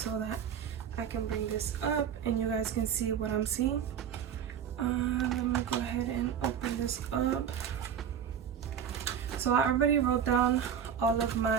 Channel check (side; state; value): left; quieter; 8.3 dB